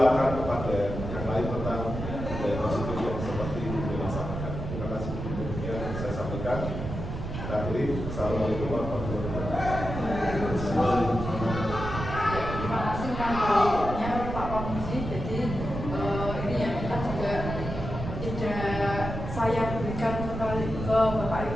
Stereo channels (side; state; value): right; noise; rumble, 6 dB below the sound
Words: kepada yang lain tentang budaya positif yang seperti itu dilaksanakan. Terima kasih. Demikian saya sampaikan. Akhiri, assalamualaikum warahmatullahi wabarakatuh. Terima kasih banyak Pak Komisi. Jadi ini ya kita juga tidak saya berikan kembali ke Bapak Ibu